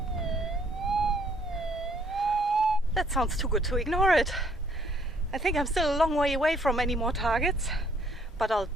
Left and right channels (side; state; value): both; normal; correlation 0.64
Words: That sounds too good to ignore it. I think I'm still a long way away from any more targets, but I'll